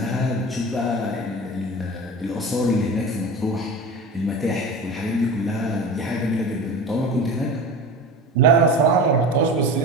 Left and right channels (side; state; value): both; normal; correlation 0.32